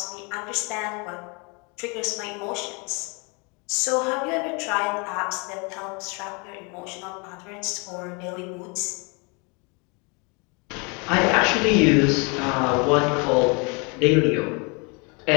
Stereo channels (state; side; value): quieter; right; 31.6 dB